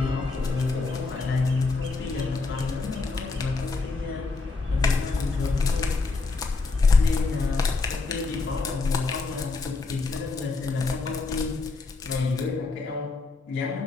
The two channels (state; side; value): quieter; right; 3.9 dB